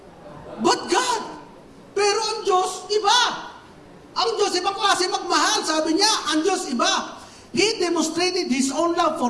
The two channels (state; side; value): identical; both; correlation 1.00